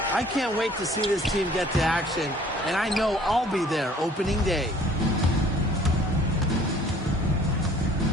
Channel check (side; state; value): both; normal; correlation 0.55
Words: I can't wait to see this team get to action, and I know I'll be there opening day.